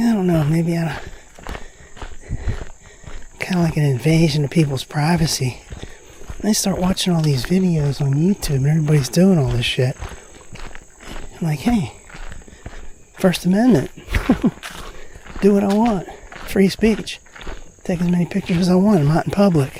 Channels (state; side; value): identical; both; correlation 1.00